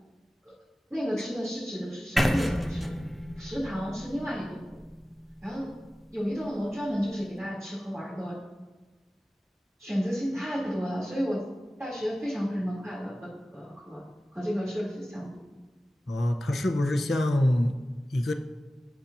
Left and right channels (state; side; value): normal; both; correlation 0.96